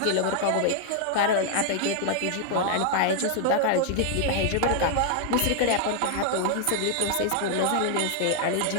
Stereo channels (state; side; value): different; both; correlation 0.00